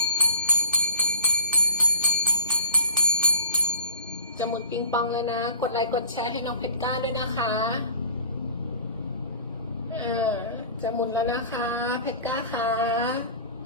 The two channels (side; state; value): both; inverted; correlation -0.42